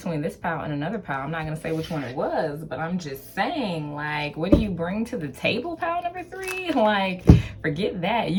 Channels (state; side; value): identical; both; correlation 1.00